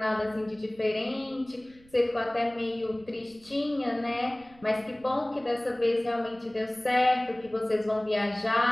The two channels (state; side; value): noise; right; rumble, 27 dB below the sound